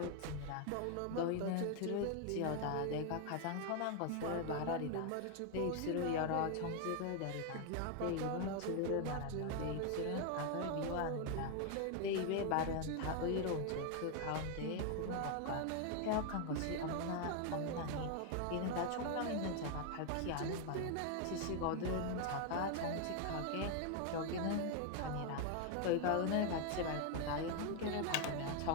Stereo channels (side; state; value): both; different; correlation 0.01